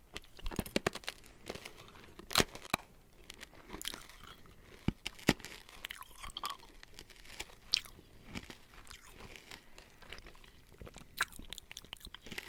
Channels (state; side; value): identical; both; correlation 1.00